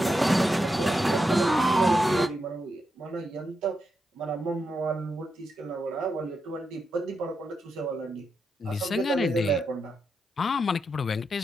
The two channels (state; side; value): normal; both; correlation 0.85